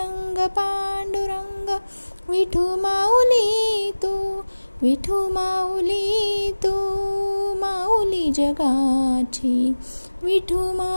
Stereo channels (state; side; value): inverted; both; correlation -1.00